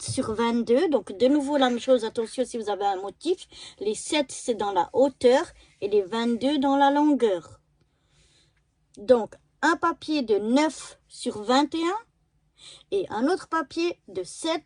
sur 22. Donc, de nouveau, la même chose. Attention, si vous avez un motif, les 7, c'est dans la hauteur et les 22 dans la longueur. Donc, un papier de 9 sur 21 et un autre papier de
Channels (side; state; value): both; identical; correlation 1.00